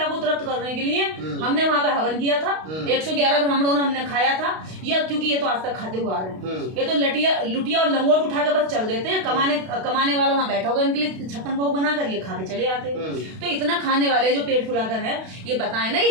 को तृप्त करने के लिए हमने वहां पे हवन किया था, 111 ब्राह्मणों ने हमने खाया था, या क्योंकि ये तो आज तक खाते हुए आ रहे हैं। ये तो लुटिया और लंगोट उठा के बस चल देते हैं, कमाने वाला वहां बैठा होगा हवन के लिए 56 भोग बनाकर ये खा के चले आते हैं। तो इतना खाने वाले जो पेट फुलाकर है, ये बताएं ना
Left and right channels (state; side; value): late; left; 32 ms